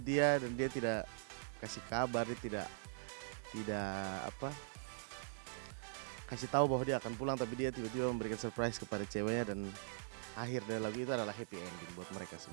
dia, dan dia tidak kasih kabar, dia tidak apa kasih tahu bahwa dia akan pulang, tapi dia tiba-tiba memberikan surprise kepada ceweknya, dan akhir dari lagu itu adalah happy ending buat mereka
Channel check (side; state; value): left; silent; digital silence